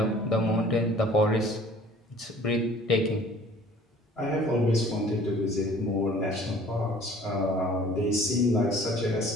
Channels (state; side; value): normal; both; correlation 0.51